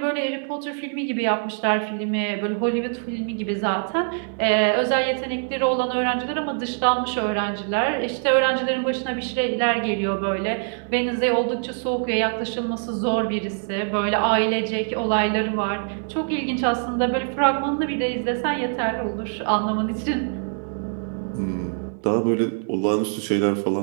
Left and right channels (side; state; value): left; silent; 59 dB below the other